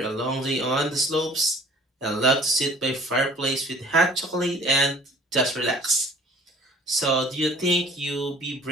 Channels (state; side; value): normal; both; correlation 0.52